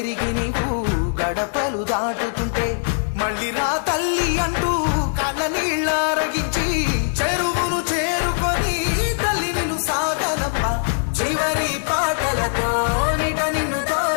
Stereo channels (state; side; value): silent; right; digital silence